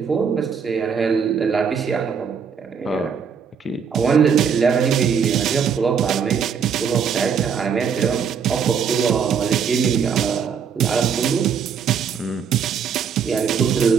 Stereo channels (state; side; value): quieter; left; 6.8 dB